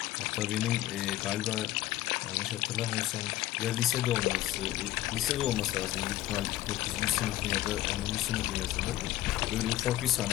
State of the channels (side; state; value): right; quieter; 15.0 dB